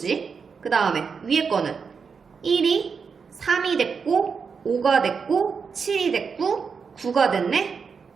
그 다음에 위에 거는 1이 3이 됐고 5가 됐고 7이 됐고 9가 됐네.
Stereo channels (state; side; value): quieter; left; 5.7 dB